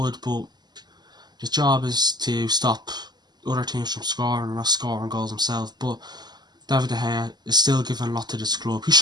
but his job is to stop other teams from scoring and not scoring goals himself. But David de Gea is still giving a lot to this club. He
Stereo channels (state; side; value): late; left; 0.21 ms